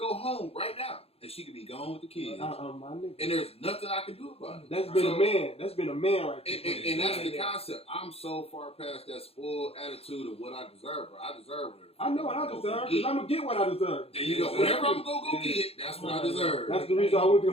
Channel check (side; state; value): right; late; 0.29 ms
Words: home right now, and she could be gone with the kids. My nigga. And there's nothing I can do about it. That's been a man. That's been a man right there. And that's the concept. I'm so far past that spoiled attitude of what I deserve, bro. I deserve it. I know what I deserve, because I'm going to get what I deserve. There you go. Whatever I'm going to go get, that's what I deserve. That's the reason I went to